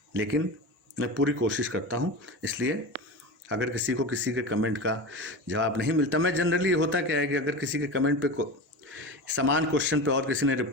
लेकिन मैं पूरी कोशिश करता हूँ। इसलिए अगर किसी के कमेंट का जवाब नहीं मिलता, मैं जनरली होता क्या है कि अगर किसी के कमेंट पे समान क्वेश्चन पे और किसी ने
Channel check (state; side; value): normal; both; correlation 0.27